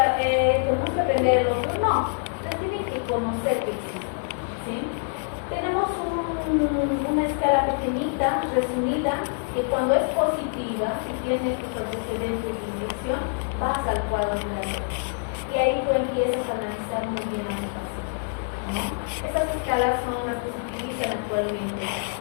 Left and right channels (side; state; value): right; silent; 61 dB below the other